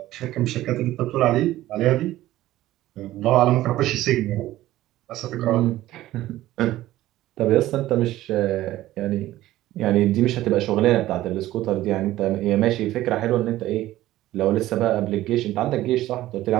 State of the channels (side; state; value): left; quieter; 15.3 dB